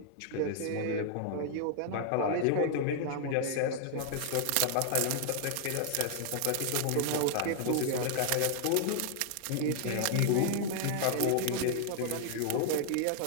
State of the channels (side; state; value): both; different; correlation 0.00